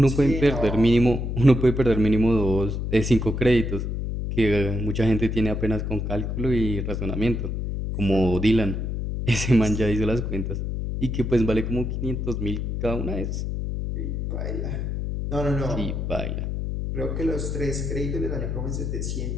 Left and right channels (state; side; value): noise; left; hum, 2 dB below the sound